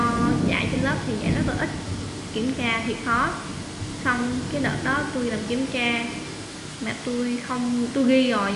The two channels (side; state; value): both; identical; correlation 1.00